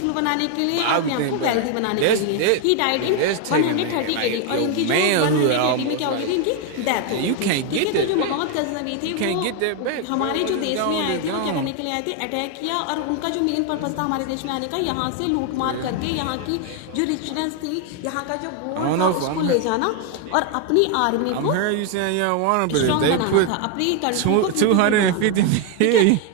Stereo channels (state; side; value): different; both; correlation 0.01